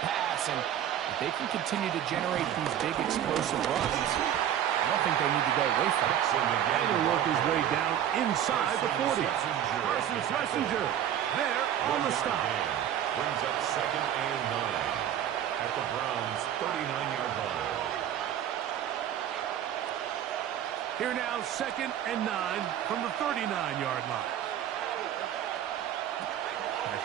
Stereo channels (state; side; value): quieter; left; 10.4 dB